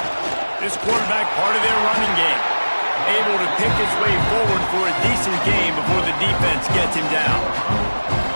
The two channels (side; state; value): both; inverted; correlation -1.00